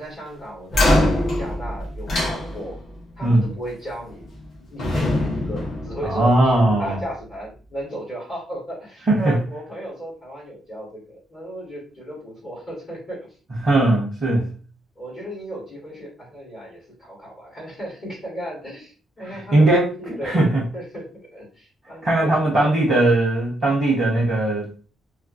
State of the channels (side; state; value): both; normal; correlation 0.79